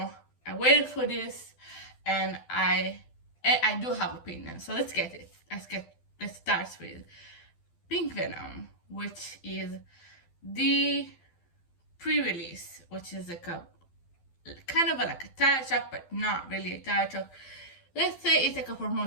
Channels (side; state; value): right; late; 12 ms